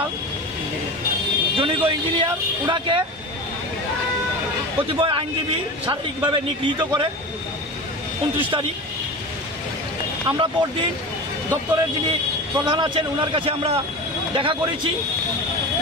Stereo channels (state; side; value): normal; both; correlation 0.29